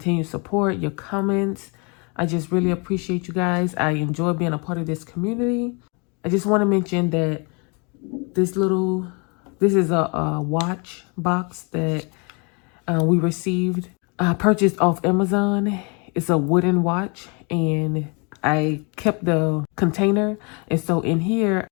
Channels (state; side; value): quieter; right; 32.9 dB